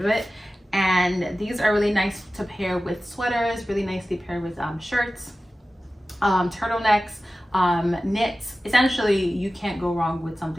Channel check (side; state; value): both; normal; correlation 0.95